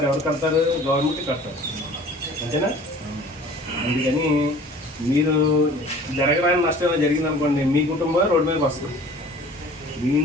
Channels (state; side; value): normal; both; correlation 0.47